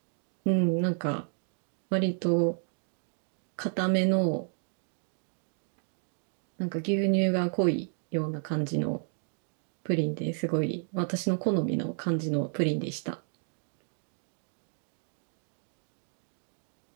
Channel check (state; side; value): silent; left; 57 dB below the other